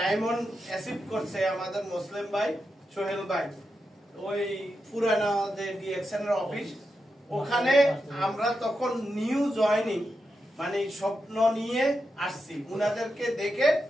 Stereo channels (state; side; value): normal; both; correlation 0.87